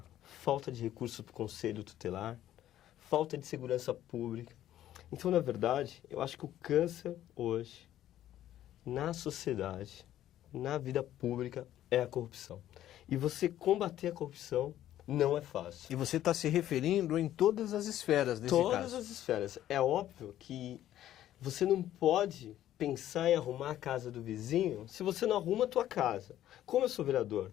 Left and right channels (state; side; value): quieter; right; 12.5 dB